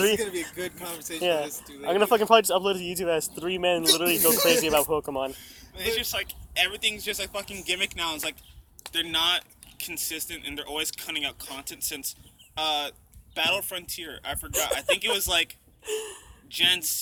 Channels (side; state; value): both; identical; correlation 1.00